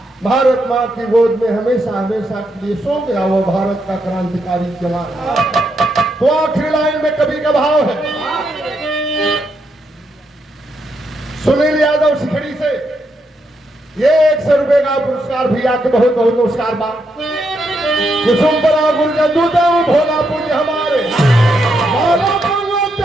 भारत माँ की गोद में हमेशा हमेशा के लिए सो गया वो भारत का क्रांतिकारी जवान। तो आखिरी लाइन में कवि का भाव है, सुनील यादव सिखड़ी से ये 100 रुपए का पुरस्कार भैया के बहुत बहुत नमस्कार बा। कुसुमपुरा गुरजदू देव भोला पूज्य हमारे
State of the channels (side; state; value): both; normal; correlation 0.80